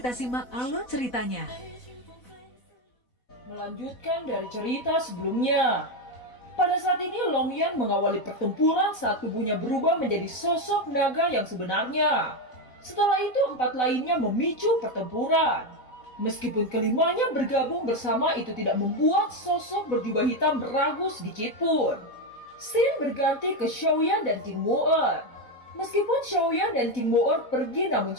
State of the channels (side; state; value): right; late; 4.0 ms